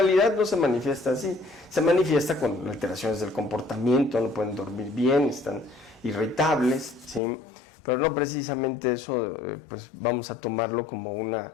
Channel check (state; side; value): drops out; right; at 7.2 s